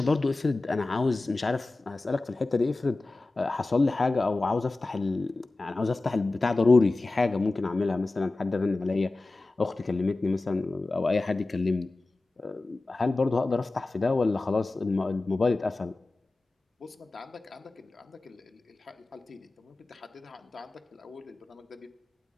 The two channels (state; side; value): quieter; right; 3.2 dB